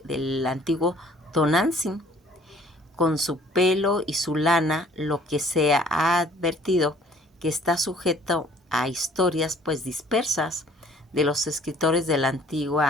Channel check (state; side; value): normal; both; correlation 0.56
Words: antiguo Tonantzin, con su pelo y su lana, lo que se ha advertido que está sujeto a historias pues dispersas de los escritores de la